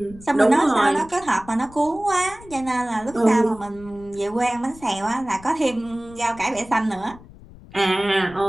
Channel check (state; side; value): noise; left; rumble, 20 dB below the sound